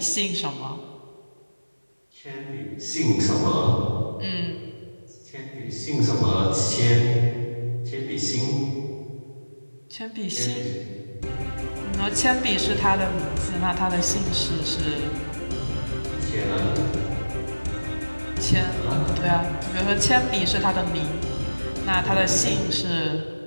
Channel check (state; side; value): inverted; both; correlation -1.00